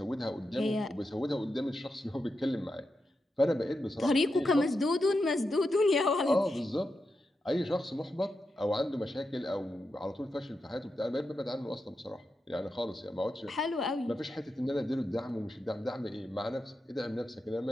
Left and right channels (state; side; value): normal; both; correlation 0.88